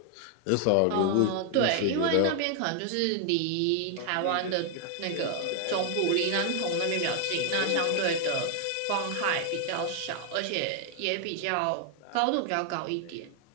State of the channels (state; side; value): different; both; correlation 0.00